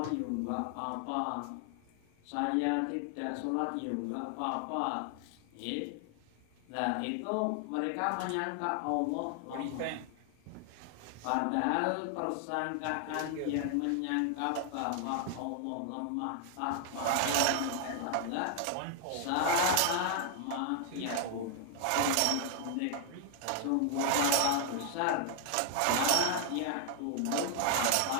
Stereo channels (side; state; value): both; different; correlation 0.00